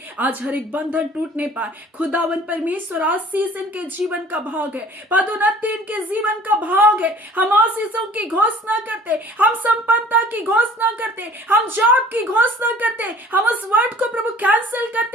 आज हर एक बंधन टूटने पाए। खुदावन परमेश्वर आशीष इनके जीवन का भाग है, पदोन्नति इनके जीवन का भाग है। हम आशीषों की घोषणा करते, हम संपन्नता की घोषणा करते, हम जॉब की घोषणा करते, हम उस वर्ड को प्रभु कैंसिल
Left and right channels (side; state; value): both; normal; correlation 0.49